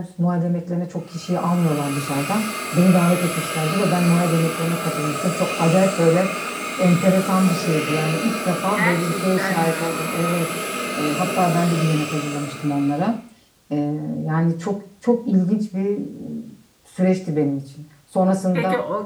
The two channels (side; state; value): both; identical; correlation 1.00